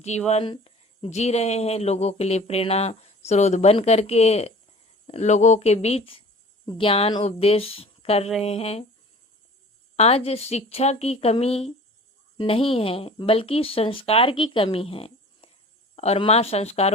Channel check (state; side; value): normal; both; correlation 0.43